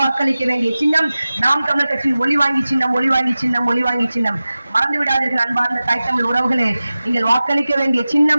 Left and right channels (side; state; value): both; inverted; correlation -0.96